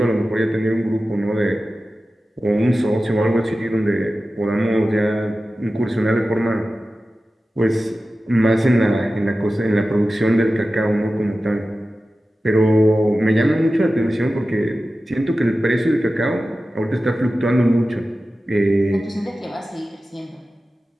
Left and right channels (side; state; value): both; normal; correlation 0.94